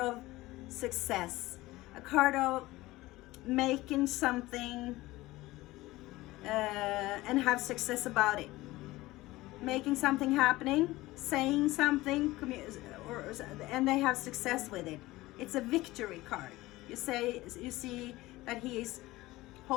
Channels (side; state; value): right; quieter; 18.7 dB